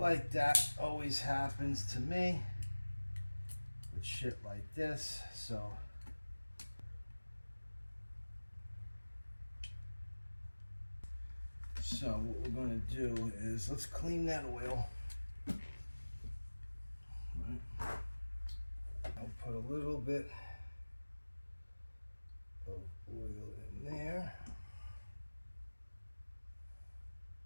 that always happens to me with shit like this. So what we're going to do is let's clean that oil. Right. I'll put a little bit of oil in there.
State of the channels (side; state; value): both; inverted; correlation -1.00